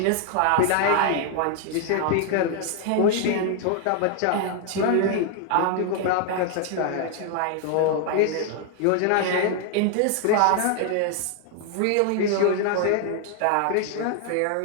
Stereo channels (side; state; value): both; different; correlation 0.00